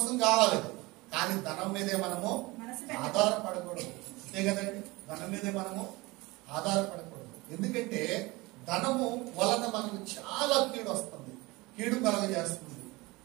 కావాలి, కానీ ధనం మీదే మనము ఆధారపడకూడదు. అంతే కదండి, ధనం మీదే మనము ఆధారపడకూడదు. ఎందుకంటే ధనము వలన మనకు చాలా కీడు వస్తుంది, కీడు కలగజేస్తుంది.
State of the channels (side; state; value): left; quieter; 22.7 dB